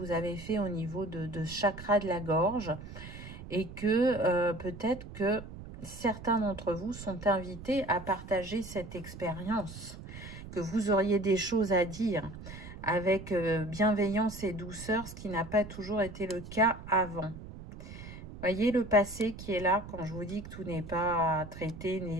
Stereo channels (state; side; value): noise; right; rumble, 13 dB below the sound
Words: avez fait au niveau de chakra de la gorge et que peut-être que certains d'entre vous sont invités à partager cette expérience, que vous auriez des choses à dire avec bienveillance et douceur, ce qui n'a pas toujours été le cas avant. Voyez le passé qui est là quand je vous dis que tout n'est pas traité,